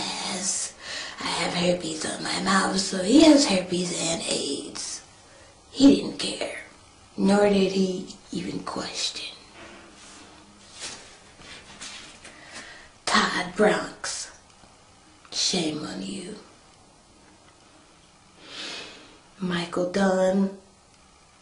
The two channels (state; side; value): identical; both; correlation 1.00